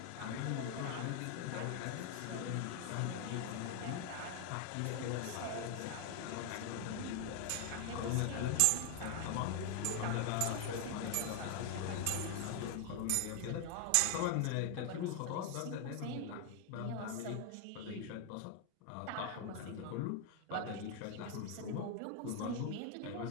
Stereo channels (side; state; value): both; different; correlation 0.00